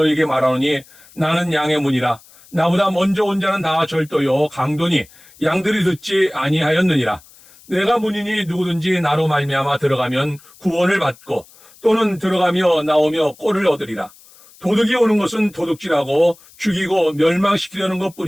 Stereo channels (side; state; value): left; noise; hiss, 25 dB below the sound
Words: 말하노니 나는 양의 문이라. 나보다 먼저 온 자는 다 절도요 강도니 양들이 듣지 아니하였느니라. 내가 문이니 누구든지 나로 말미암아 들어가면 구원을 받고 또는 들어가며 나오며 꼴을 얻으리라. 도둑이 오는 것은 도둑질하고 죽이고 멸망시키려는